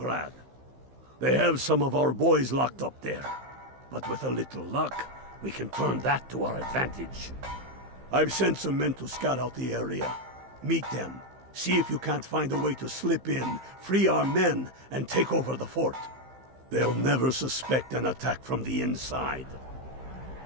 They have some of our boys locked up there. But with a little luck, we can turn that to our advantage. I've sent some men to scout out the area. Meet them. See if you can't find a way to slip in, free our men, and take over the fort. They'll never suspect an attack from the inside.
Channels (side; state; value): left; late; 15 ms